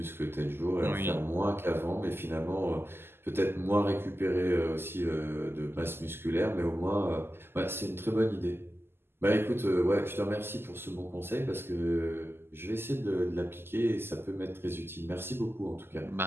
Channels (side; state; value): left; late; 0.11 ms